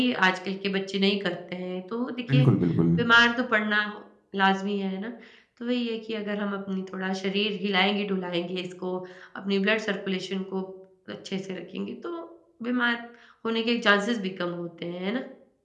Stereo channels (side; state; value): both; identical; correlation 1.00